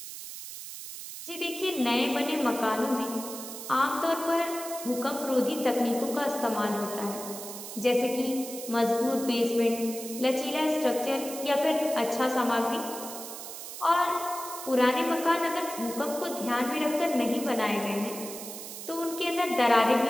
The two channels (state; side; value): noise; right; hiss, 10 dB below the sound